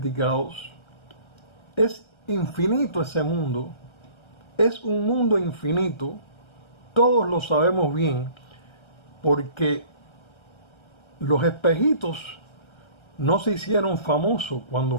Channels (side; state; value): right; late; 1.3 ms